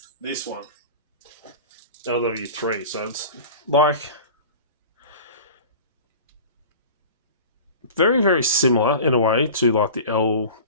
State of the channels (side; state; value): both; inverted; correlation -0.37